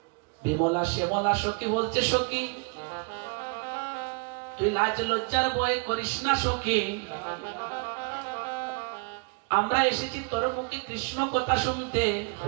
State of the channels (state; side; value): quieter; left; 32.6 dB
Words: বিমলা শ্যামলা সখী বলছে, সখী তুই লাজ লজ্জার ভয় করিস না সখী, আমরা এসেছি তোর মুখে কৃষ্ণ কথা শুনতে।